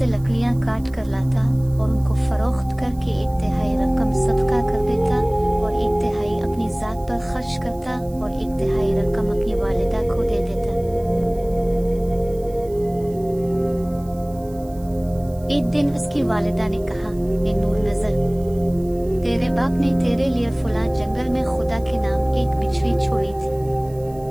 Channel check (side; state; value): right; noise; hiss, 26 dB below the sound